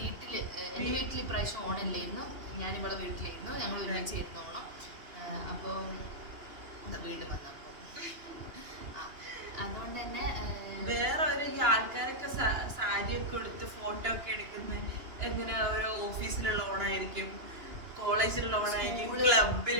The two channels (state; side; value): late; left; 2.9 ms